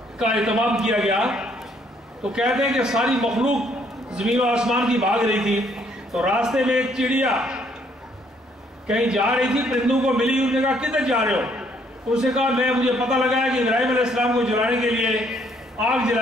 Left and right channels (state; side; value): normal; both; correlation 0.67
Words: کا اہتمام کیا گیا تو کہتے ہیں کہ ساری مخلوق زمین و آسمان کی بھاگ رہی تھی, تو راستے میں ایک چڑیا کہیں جا رہی تھی, پرندوں کو ملی, انہوں نے کہا کدھر جا رہے ہو؟ اس نے کہا مجھے پتہ لگا ہے کہ ابراہیم علیہ السلام کو جلانے کے لیے آگ